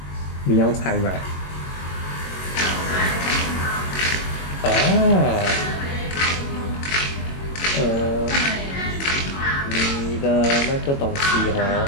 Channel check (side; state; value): right; late; 22 ms